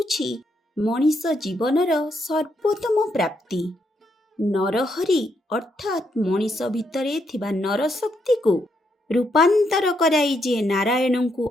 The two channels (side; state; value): both; normal; correlation 0.78